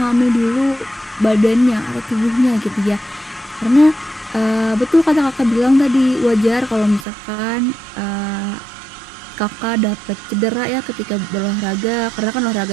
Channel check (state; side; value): drops out; left; at 7.1 s